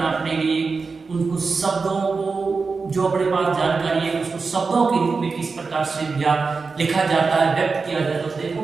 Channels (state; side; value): quieter; left; 4.5 dB